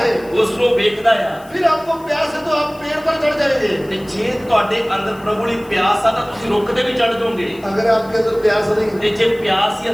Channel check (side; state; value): left; noise; hiss, 25 dB below the sound